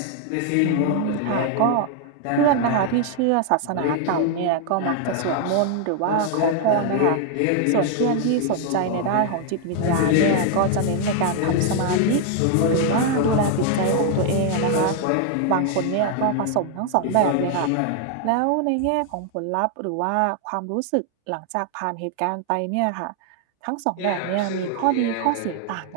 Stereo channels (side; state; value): both; different; correlation 0.00